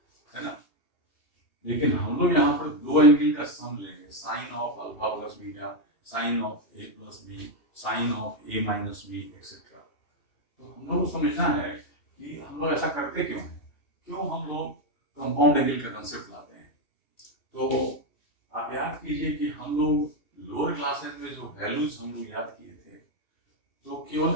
है ना। लेकिन हम लोग यहाँ पर दो एंगल का सम लेंगे, sine of alpha plus beta, sine of A plus B, sine of A minus B etcetera. तो हम लोग को समझना है कि हम लोग ऐसा करते क्यों हैं, क्यों हम लोग कंपाउंड एंगल का कंसेप्ट लाते हैं। तो आप याद कीजिए कि हम लोग लोअर क्लासेस में जो वैल्यूज हम लोग याद किए थे, तो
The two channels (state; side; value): late; right; 2.7 ms